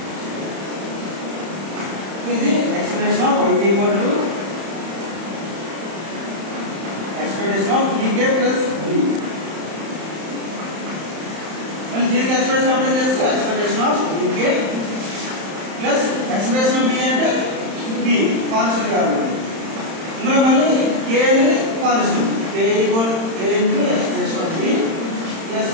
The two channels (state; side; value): late; left; 31 ms